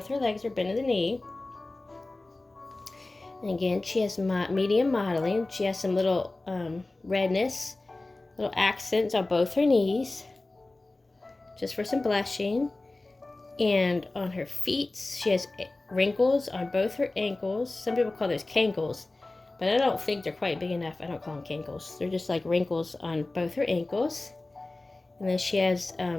her legs are bent at the knee. And again, she has medium modeling. She has some little redness, little accents on both her knees, just for some blushing. And on her feet, she has wrinkles on both her ankles. Some people call those cankles, but I don't think they're quite big enough. I don't call them cankles. They're just like wrinkles on both her ankles. And then she has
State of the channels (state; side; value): quieter; right; 3.0 dB